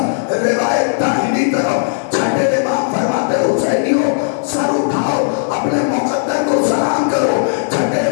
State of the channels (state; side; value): silent; right; digital silence